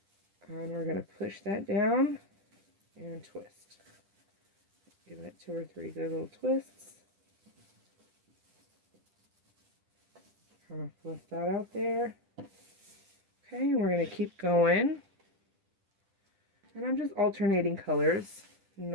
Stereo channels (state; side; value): late; left; 10 ms